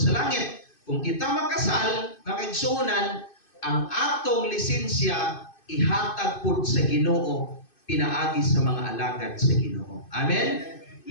langit. Kung kita makasal, makaigsuunan, ang atong lisensya ihatag pud sa Ginoo, pinaagi sa mga alagad sa Ginoo. Amen.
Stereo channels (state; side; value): late; right; 2.5 ms